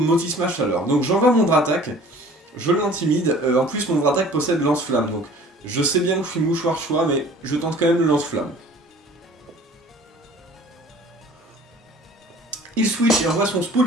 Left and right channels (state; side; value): normal; both; correlation 0.48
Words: Chaleur. Donc j'envoie mon Dratak. Je l'intimide. En plus, mon Dratak possède Lance-Flamme. Donc je sais bien que je suis mouchoir choix, mais je tente quand même le Lance-Flamme. Il switch et envoie son